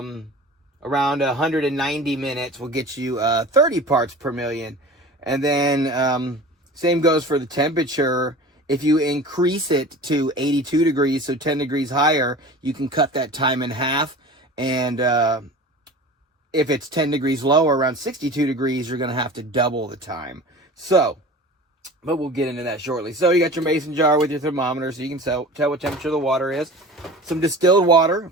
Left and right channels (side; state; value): both; normal; correlation 0.37